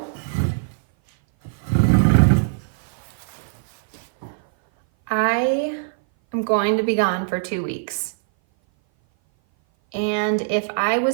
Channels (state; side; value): silent; left; 58 dB below the other